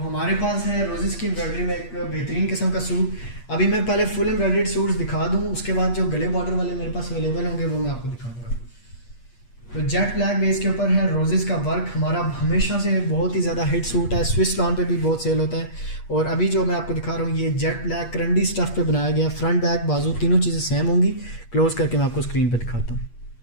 पास है रोजेस की एम्ब्रॉयडरी में एक बेहतरीन किस्म का सूट। अभी मैं पहले फुल एम्ब्रॉयडर्ड सूट्स दिखा दूं, उसके बाद जो गले बॉर्डर वाले मेरे पास अवेलेबल होंगे वो मैं आपको दिखाऊंगा। तो जेट ब्लैक बेस के ऊपर है रोजेस का वर्क, हमारा हमेशा से बहुत ही ज़्यादा हिट सूट है, स्विस लॉन पे भी बहुत सेल होता है। और अभी जो मैं आपको दिखा रहा हूँ ये जेट ब्लैक करंडी स्टफ पे बनाया गया, फ्रंट बैक बाजू तीनों चीज़ें सेम होंगी। क्लोज करके मैं आपको स्क्रीन पे दिखाता हूँ।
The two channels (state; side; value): late; right; 8.4 ms